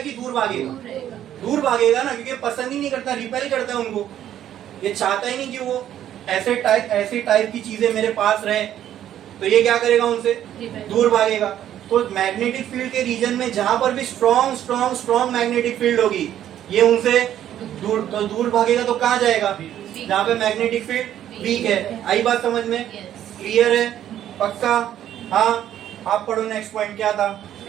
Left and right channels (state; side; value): quieter; left; 11.2 dB